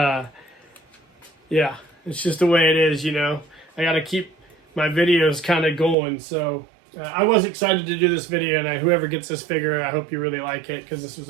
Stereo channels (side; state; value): left; drops out; at 6.0 s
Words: it's just the way it is, you know. I got to keep my videos kind of going. So, I was excited to do this video, and whoever gets this figure, I hope you really like it because this was